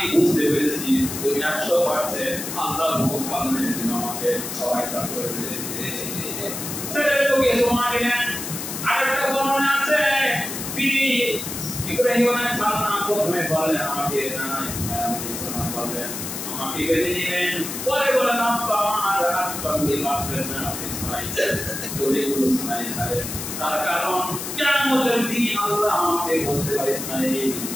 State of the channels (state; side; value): noise; left; hiss, 6 dB below the sound